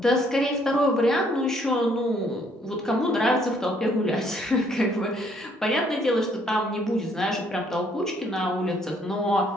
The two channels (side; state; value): both; normal; correlation 0.66